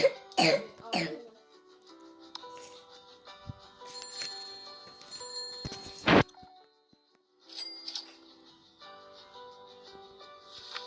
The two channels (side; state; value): both; identical; correlation 1.00